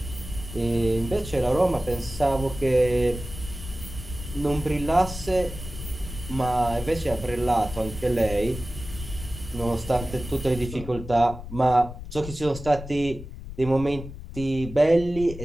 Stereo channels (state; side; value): noise; left; rumble, 11 dB below the sound